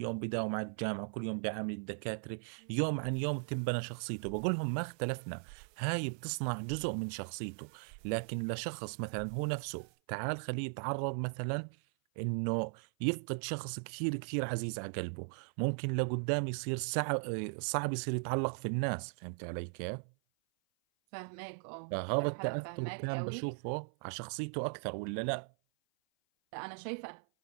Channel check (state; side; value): silent; left; 53 dB below the other